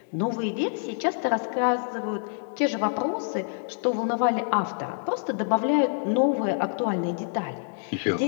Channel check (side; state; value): right; silent; 60 dB below the other